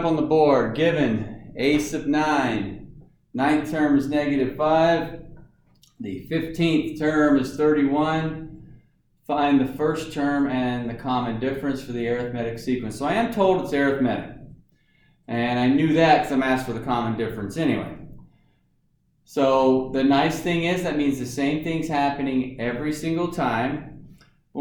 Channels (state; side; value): identical; both; correlation 1.00